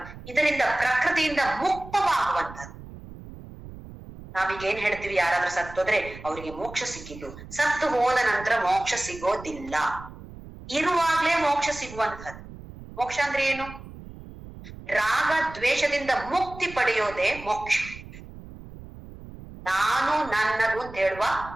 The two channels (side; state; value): right; noise; rumble, 15 dB below the sound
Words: ಇದರಿಂದ ಪ್ರಕೃತಿಯಿಂದ ಮುಕ್ತವಾಗುವಂಥದ್ದು. ನಾವೀಗ ಏನ್ ಹೇಳ್ತೀವಿ, ಯಾರಾದ್ರೂ ಸತ್ತೋದ್ರೆ ಅವರಿಗೆ ಮೋಕ್ಷ ಸಿಕ್ಕಿದ್ದು, ಸತ್ತು ಹೋದ ನಂತರ ಮೋಕ್ಷ ಸಿಗೋದಿಲ್ಲ, ಇರುವಾಗ್ಲೇ ಮೋಕ್ಷ ಸಿಗುವಂಥದ್ದು. ಮೋಕ್ಷ ಅಂದ್ರೆ ಏನು? ರಾಗ ದ್ವೇಷದಿಂದ ಮುಕ್ತಿ ಪಡೆಯೋದೇ ಮೋಕ್ಷ. ನಾನು ನನ್ನದು ಅಂತ ಹೇಳುವ